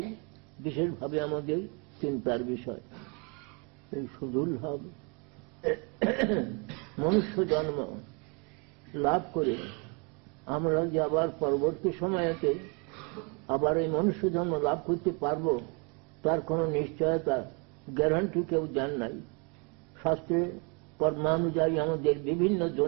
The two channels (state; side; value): quieter; left; 33.7 dB